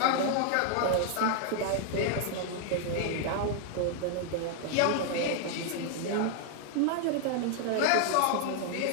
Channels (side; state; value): both; different; correlation 0.00